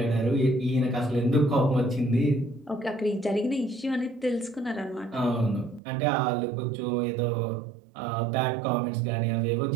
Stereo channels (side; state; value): left; drops out; at 5.8 s